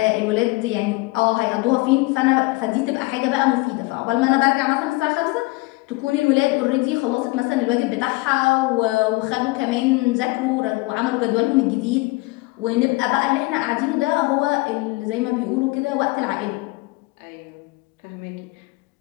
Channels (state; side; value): quieter; right; 23.0 dB